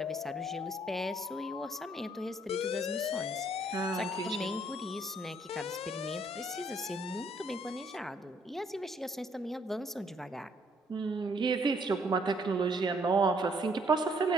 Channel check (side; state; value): both; normal; correlation 0.66